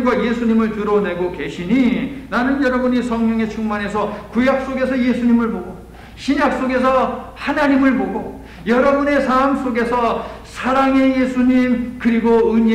예수님을 드러내고 계시니 나는 여러분이 성령에 충만해서 구약 속에서 예수님을 보고 신약 속에서 하나님을 보고 여러분의 삶 속에서 사랑의 예수님 그리고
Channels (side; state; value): both; identical; correlation 1.00